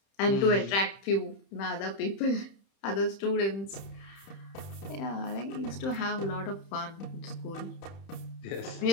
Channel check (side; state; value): right; late; 31 ms